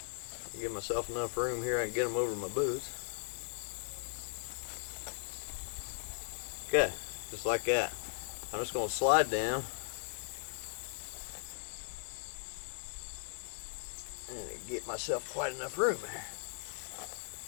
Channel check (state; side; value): silent; right; digital silence